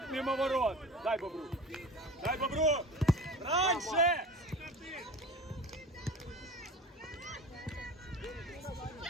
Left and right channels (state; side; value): normal; both; correlation 0.37